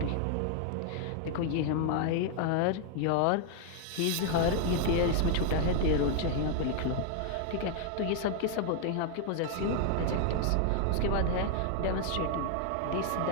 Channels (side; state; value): both; different; correlation 0.00